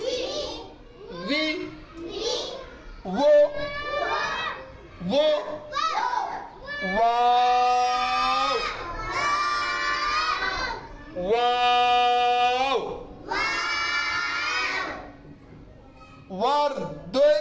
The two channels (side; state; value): both; identical; correlation 1.00